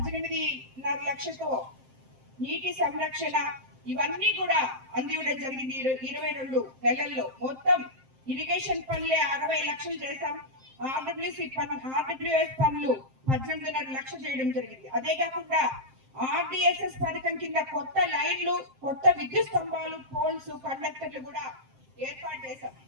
లక్షలతో నీటి సంరక్షణ ఇవన్నీ కూడా అందివ్వడం జరిగింది. 22 నెలల్లో మొత్తం ఇరిగేషన్ పనులే 60 లక్షలు చేశాం. ఆర్డబ్ల్యూఎస్ పనులు 18.5 లక్షలు చేయడం జరిగింది. అదే కాకుండా ఆర్డిఎస్ఎస్ పథకం కింద కొత్త లైన్లు, కొత్త విద్యుత్ స్తంభాలు, పోల్స్, కండక్టర్లు కూడా ఏర్పాటు చేశాం.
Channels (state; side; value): late; left; 7.6 ms